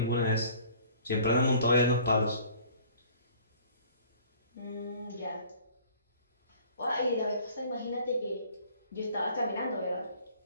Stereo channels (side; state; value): both; inverted; correlation -0.52